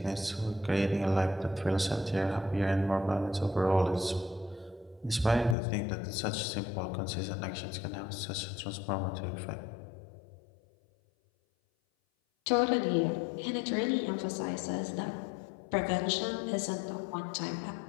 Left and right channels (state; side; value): drops out; right; at 5.6 s